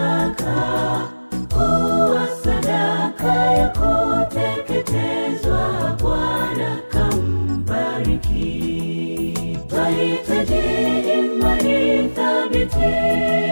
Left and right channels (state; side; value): inverted; both; correlation -1.00